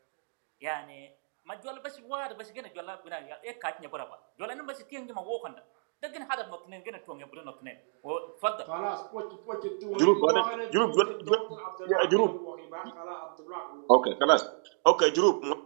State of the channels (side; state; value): left; silent; 57 dB below the other